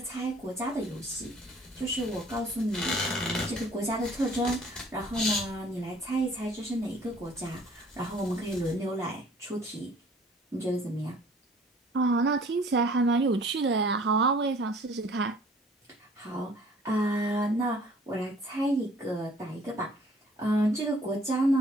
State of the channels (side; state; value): both; normal; correlation 0.55